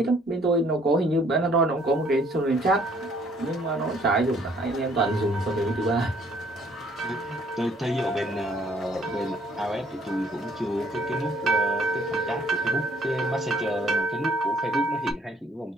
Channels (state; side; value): normal; both; correlation 0.62